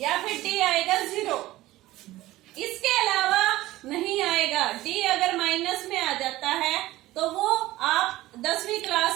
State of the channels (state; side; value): quieter; left; 17.0 dB